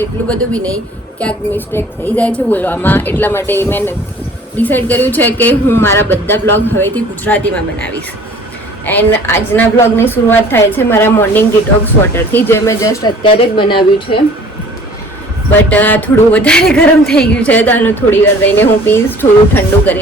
એટલું બધું બી નહીં. ક્યાંક મિસ્ટેક થઈ જાય છે બોલવામાં, એટલા માટે મેં ડિસાઈડ કર્યું છે કે હું મારા બધા બ્લોગ હવેથી ગુજરાતીમાં બનાવીશ. એન્ડ આજના બ્લોગની શરૂઆત થાય છે મારા મોર્નિંગ ડિટોક્સ વોટરથી, જે મેં જસ્ટ અત્યારે જ બનાવ્યું છે. બટ થોડું વધારે ગરમ થઈ ગયું છે, તો આનું થોડી વાર રહીને હું પીશ, થોડું ઠંડુ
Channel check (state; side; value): normal; both; correlation 0.50